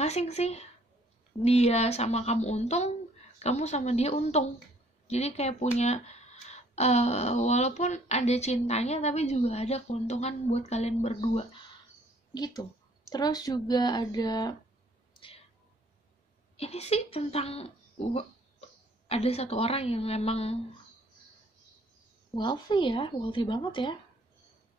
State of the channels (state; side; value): normal; both; correlation 0.61